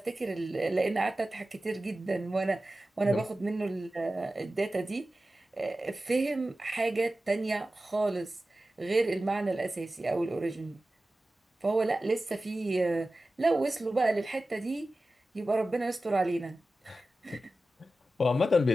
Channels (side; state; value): both; normal; correlation 0.95